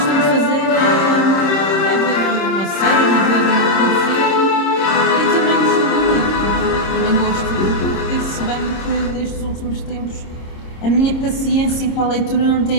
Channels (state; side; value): late; right; 26 ms